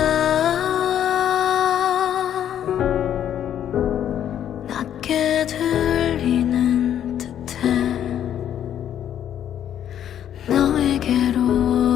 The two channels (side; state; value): right; quieter; 10.2 dB